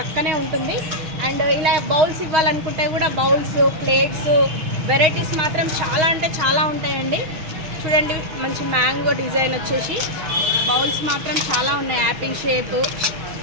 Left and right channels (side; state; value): left; late; 6.4 ms